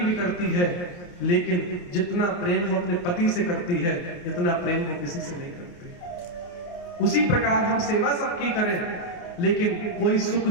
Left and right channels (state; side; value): late; right; 28 ms